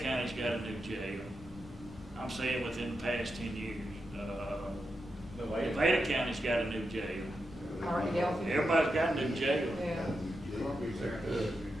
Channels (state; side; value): normal; both; correlation 0.87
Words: County's got a new jail. I'm saying within the past 10 years. Nevada County's got a new jail. Everybody's got a new jail. Yeah.